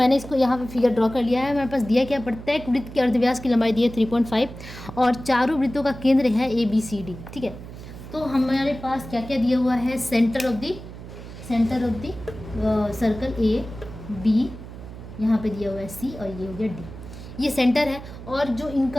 इसको यहाँ पे फिगर ड्रॉ कर लिया है। मेरे पास दिया क्या, प्रत्येक वृत्त के अर्धव्यास की लंबाई दी है 3.5 और चारों वृत्तों का केंद्र है ABCD। ठीक है, तो हमारे पास क्या क्या दिया हुआ है, centre of the circle AB, यहाँ पे दिया हुआ है C और ये हो गया D। ये सेंटर है और जो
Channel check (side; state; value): right; noise; hum, 13 dB below the sound